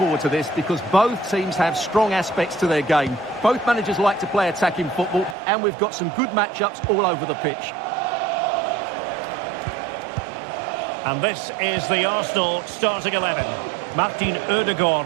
to this because both teams have strong aspects to their game. Both managers like to play attacking football, and we've got some good matchups all over the pitch. And this is the Arsenal starting 11. Martin Ødegaard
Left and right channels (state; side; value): drops out; left; at 5.4 s